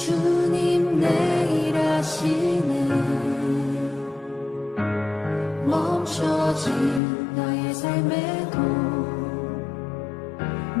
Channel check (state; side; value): drops out; right; at 7.0 s